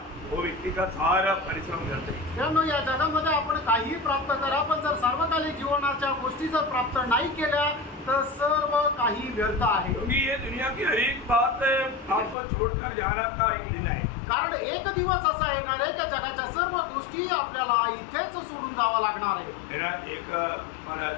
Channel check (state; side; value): drops out; right; at 12.4 s